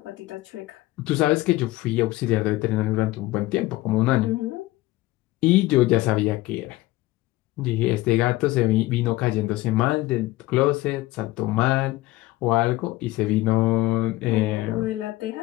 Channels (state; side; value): quieter; right; 18.3 dB